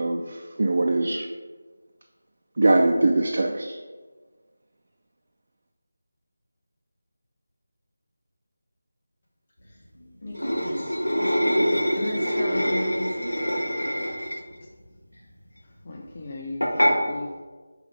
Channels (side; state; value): both; inverted; correlation -0.97